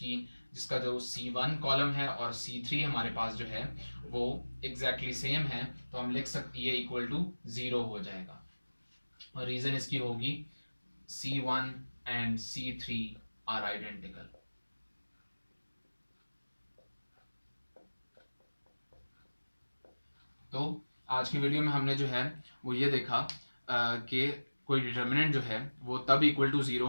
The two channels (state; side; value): inverted; both; correlation -1.00